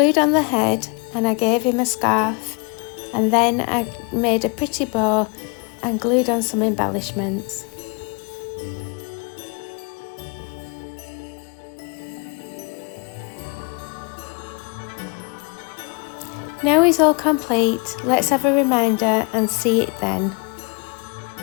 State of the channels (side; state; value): right; quieter; 33.7 dB